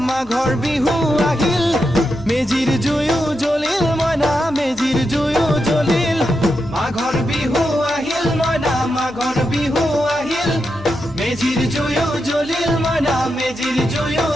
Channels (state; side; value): noise; left; hum, 23 dB below the sound